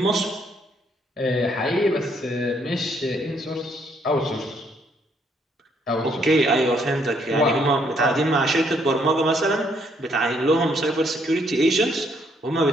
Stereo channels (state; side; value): normal; both; correlation 0.70